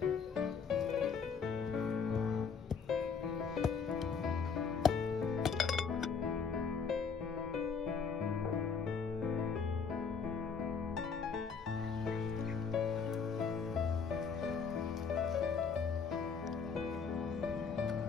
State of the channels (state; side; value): quieter; right; 5.8 dB